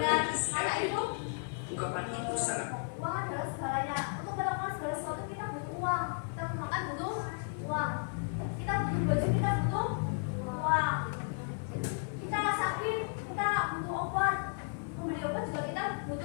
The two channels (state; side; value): silent; right; 55 dB below the other